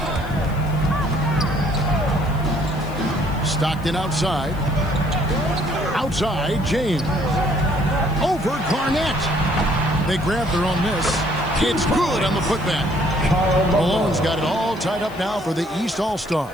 Stockton outside. Outside, James. Over Garnett. They grab their own miss. It's good on the putback. Malone's got it all tied up now for the East All-Stars.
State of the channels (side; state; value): left; noise; hiss, 24 dB below the sound